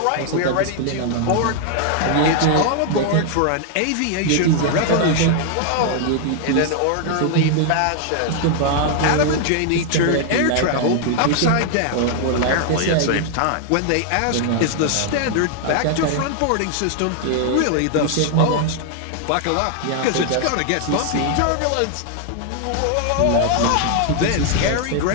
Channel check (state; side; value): different; both; correlation 0.00